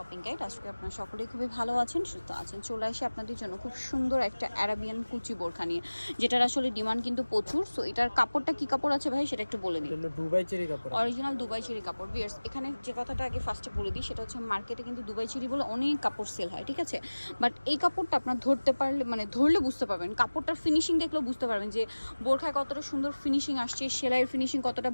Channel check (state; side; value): inverted; both; correlation -1.00